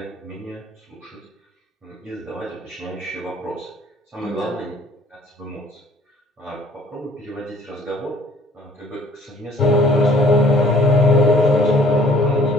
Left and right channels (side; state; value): both; normal; correlation 0.56